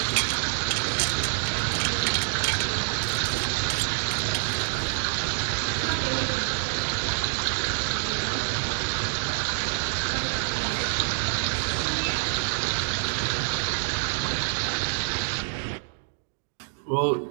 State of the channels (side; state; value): left; silent; digital silence